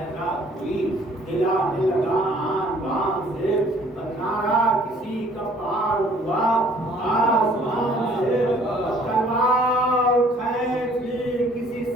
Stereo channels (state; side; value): normal; both; correlation 0.57